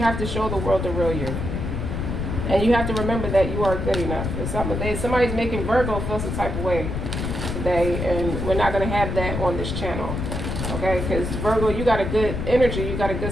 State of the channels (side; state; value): left; noise; rumble, 3 dB below the sound